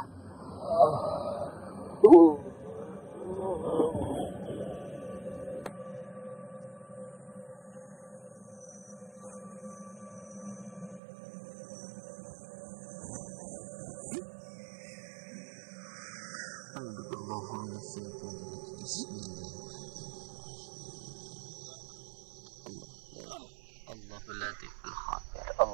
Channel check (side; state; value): left; drops out; at 11.0 s